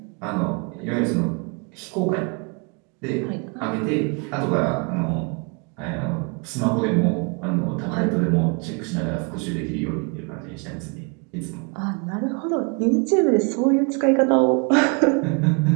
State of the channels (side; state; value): left; quieter; 33.8 dB